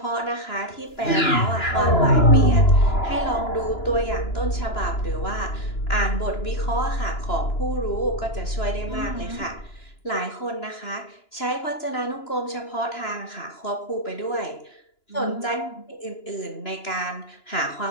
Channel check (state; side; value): late; right; 2.9 ms